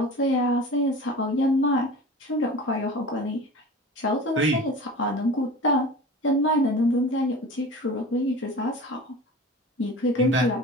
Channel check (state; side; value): normal; both; correlation 0.36